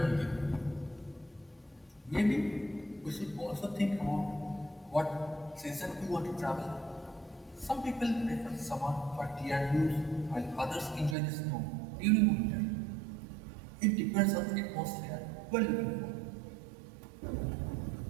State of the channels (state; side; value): drops out; left; at 11.2 s